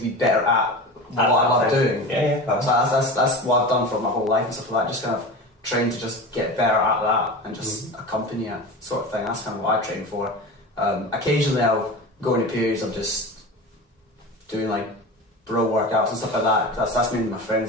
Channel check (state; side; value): normal; both; correlation 0.30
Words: be better at what I love doing. Yeah. So that's what I've done for my whole life and stuff like that, just kind of train to just get better at that and just accompany it sort of thing. That's kind of what I train for. Occasionally I'll go into periods of just doing like bro workouts and stuff like that. That's mainly my friends